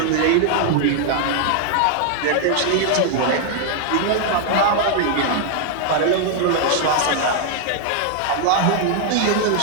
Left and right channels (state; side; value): different; both; correlation 0.00